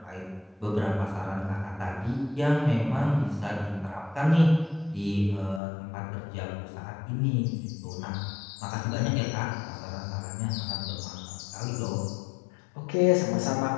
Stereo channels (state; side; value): drops out; right; at 5.6 s